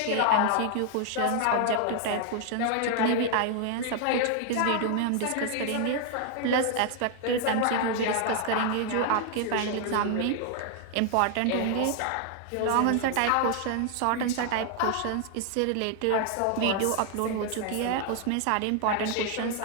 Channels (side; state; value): both; different; correlation 0.00